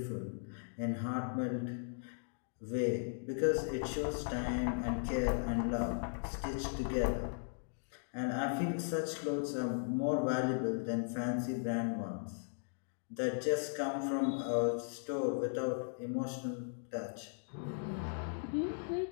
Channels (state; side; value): silent; right; digital silence